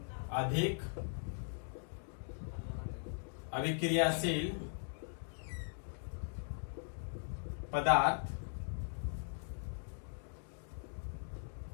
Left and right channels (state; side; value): silent; right; digital silence